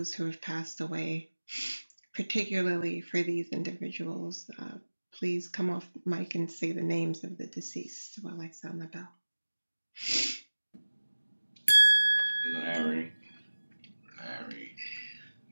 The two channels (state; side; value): inverted; both; correlation -1.00